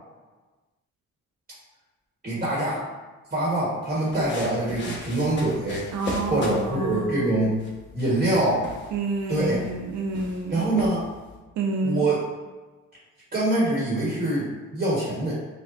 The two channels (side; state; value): both; normal; correlation 0.40